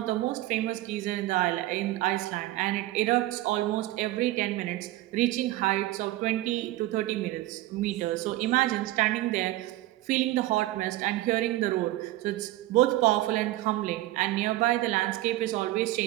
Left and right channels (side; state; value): left; quieter; 16.6 dB